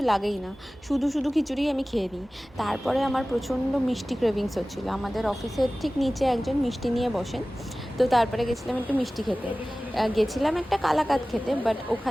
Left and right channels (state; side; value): normal; both; correlation 0.97